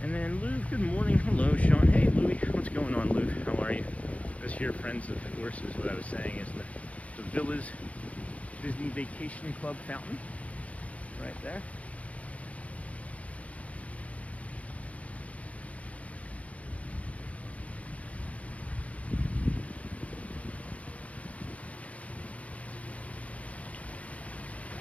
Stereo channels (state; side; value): late; right; 0.066 ms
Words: And then Lou, good morning. Hello, Sean. Hey, Louie. What's going on, Lou? How are you? This here, Friends of the Horses, what I was saying is the Villa's Disney Vacation Club fountain. Right there.